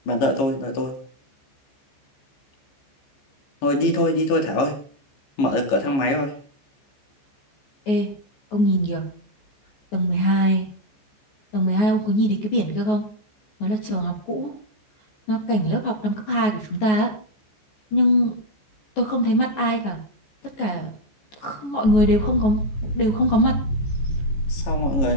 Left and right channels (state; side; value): late; right; 15 ms